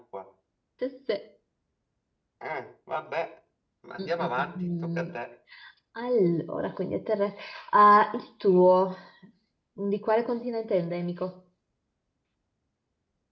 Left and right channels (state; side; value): identical; both; correlation 1.00